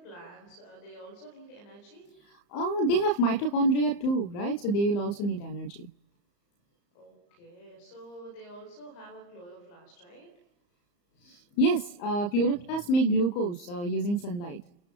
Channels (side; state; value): right; late; 34 ms